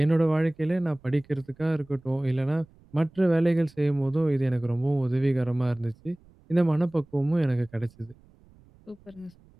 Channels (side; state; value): right; noise; rumble, 28 dB below the sound